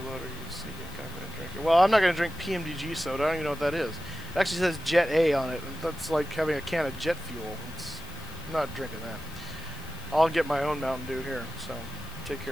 loader. You sneak in, kind of drink it. Well, I'm not going to drink PMDG soda. I don't even know what that is. It actually says Jet A on it. That's like having a can of jet fuel. I'm not drinking that. I'll get my own Mountain Dew here, so take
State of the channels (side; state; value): left; noise; hiss, 20 dB below the sound